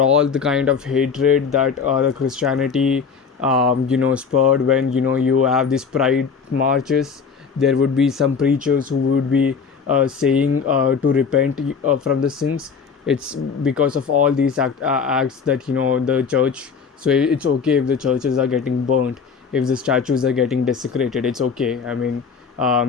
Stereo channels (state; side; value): quieter; right; 5.9 dB